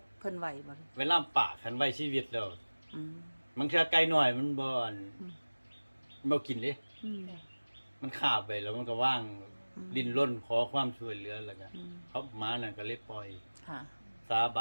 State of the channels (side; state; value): both; inverted; correlation -1.00